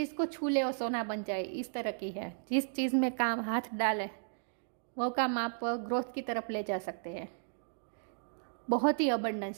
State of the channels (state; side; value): silent; left; digital silence